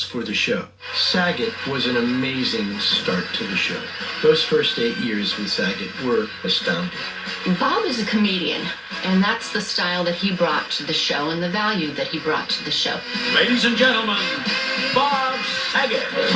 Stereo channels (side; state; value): both; identical; correlation 1.00